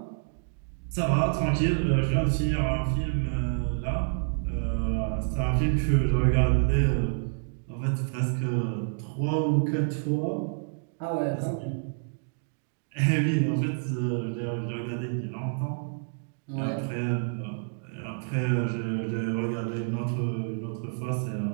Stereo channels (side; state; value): left; silent; digital silence